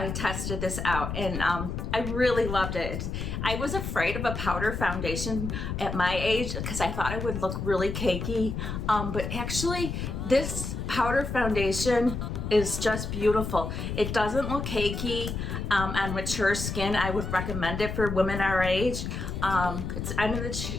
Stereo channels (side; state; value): left; noise; rumble, 4 dB below the sound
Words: tested this out, and I really loved it. I was afraid of a powder foundation at my age because I thought it would look really cakey, but actually this powder foundation is just beautiful. It doesn't look cakey on mature skin. I would recommend it for women our age. I'm in